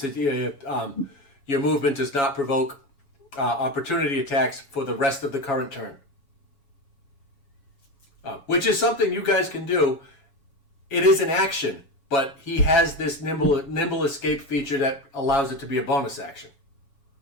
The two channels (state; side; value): late; right; 7.2 ms